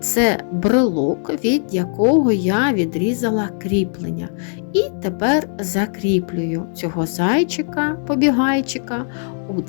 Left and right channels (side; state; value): right; silent; digital silence